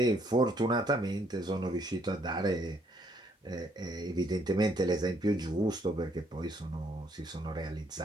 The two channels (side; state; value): both; normal; correlation 0.68